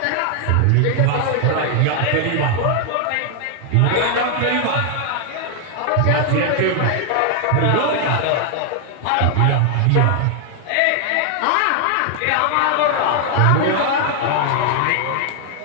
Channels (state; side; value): different; both; correlation 0.00